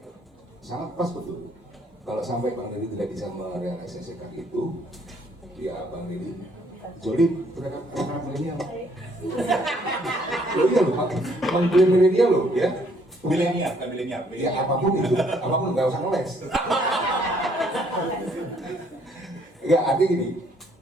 Sangat pas betul. Kalau sampai Bang Riri tidak bisa merealisasikan itu, ya Bang Riri jolim terhadap anak milenial. Loh iya loh, mengklaim milenial loh ya. Milenial, kan milenial. Ya apapun itu, apapun nggak usah ngeles. Ya artinya gini,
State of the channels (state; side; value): normal; both; correlation 0.65